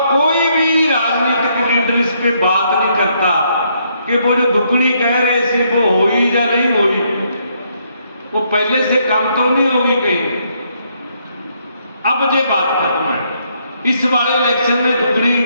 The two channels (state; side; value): inverted; both; correlation -0.72